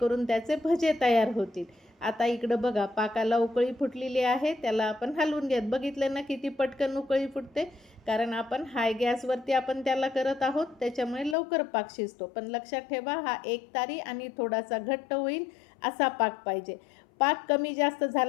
त्याचे भजे तयार होतील. आता इकडं बघा, पाकाला उकळी फुटलेली आहे, त्याला आपण हलवून घेत. बघितलं ना किती पटकन उकळी फुटते, कारण आपण हाय गॅसवरती आपण त्याला करत आहोत, त्याच्यामुळे लवकर पाक शिजतो. पण लक्षात ठेवा, हा एकतारी आणि थोडासा घट्ट होईल असा पाक पाहिजे. पाक कमी जास्त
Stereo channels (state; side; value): drops out; right; at 11.4 s